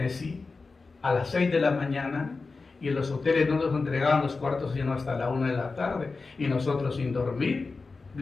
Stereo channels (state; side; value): quieter; right; 4.1 dB